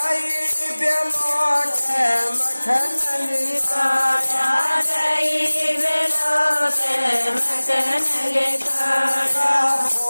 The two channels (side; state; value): both; inverted; correlation -1.00